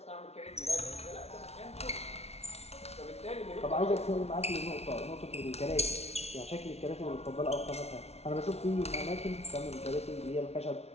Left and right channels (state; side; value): late; right; 0.31 ms